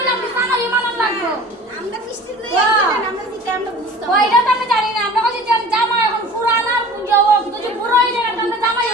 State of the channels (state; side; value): normal; both; correlation 0.42